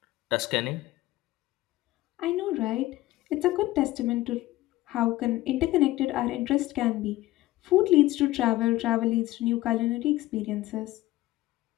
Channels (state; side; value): quieter; right; 16.9 dB